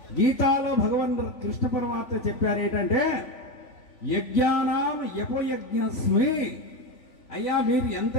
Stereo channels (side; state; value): right; late; 3.5 ms